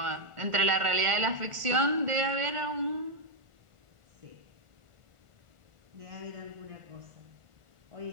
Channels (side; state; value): left; late; 1.4 ms